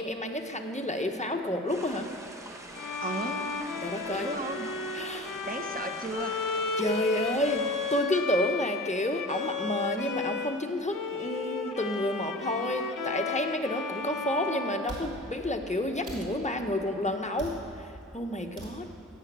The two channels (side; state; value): both; normal; correlation 0.39